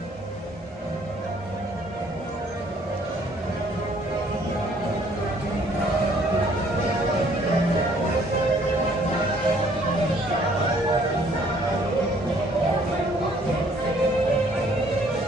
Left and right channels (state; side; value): normal; both; correlation 0.61